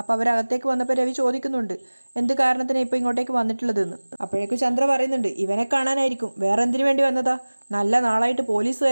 അവരകത്തേക്ക് വന്നപ്പോൾ രവി ചോദിക്കുന്നുണ്ട്, എന്ത് കാരണത്തിനാണ് ഇപ്പോൾ ഇങ്ങോട്ടേക്ക് വന്നിട്ടുള്ളതെന്ന്. അപ്പോഴേക്കും ചന്ദ്ര പറയുന്നുണ്ട്, ഇവനെ കാണാനായിരിക്കും, വേറെ എന്തിനു വേണ്ടി വന്നതാ? നല്ല നാളായിട്ട്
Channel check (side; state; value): both; inverted; correlation -1.00